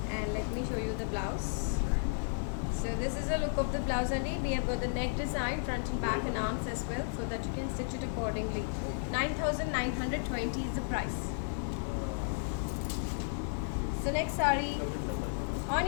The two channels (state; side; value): silent; right; digital silence